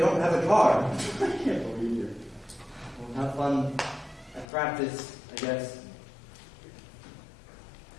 have a car? I can't believe you. Well, have fun at practice, I guess.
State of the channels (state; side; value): drops out; right; at 4.5 s